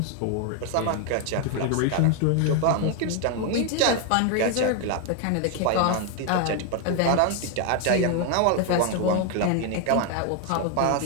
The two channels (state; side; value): different; both; correlation 0.01